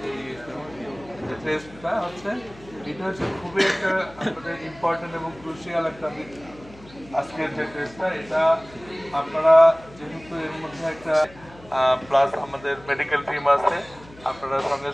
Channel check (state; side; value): noise; left; hum, 22 dB below the sound